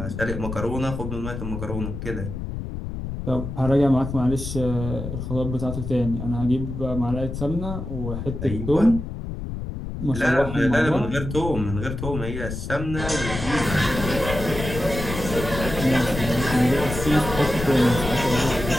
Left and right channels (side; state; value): left; noise; rumble, 6 dB below the sound